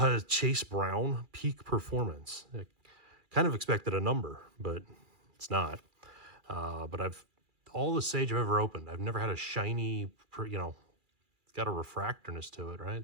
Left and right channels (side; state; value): left; late; 2.4 ms